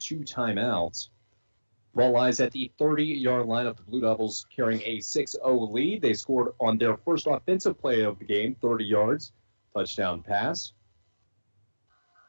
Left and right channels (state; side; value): inverted; both; correlation -1.00